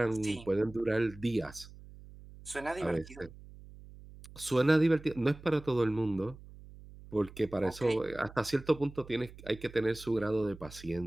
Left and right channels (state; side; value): noise; right; hum, 18 dB below the sound